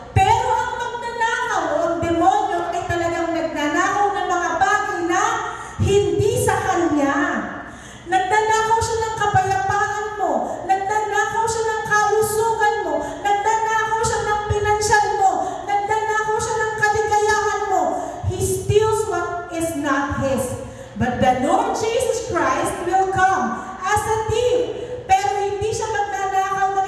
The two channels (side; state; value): both; identical; correlation 1.00